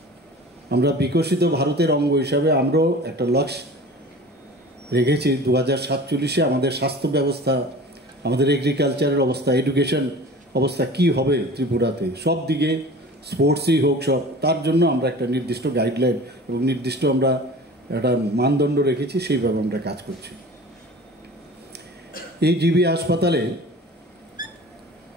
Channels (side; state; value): both; normal; correlation 0.40